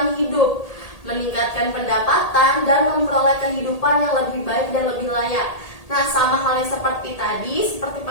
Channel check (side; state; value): right; late; 1.8 ms